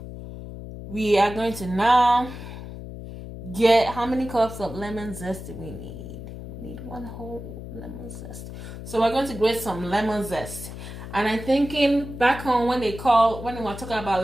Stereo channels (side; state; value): left; noise; hum, 11 dB below the sound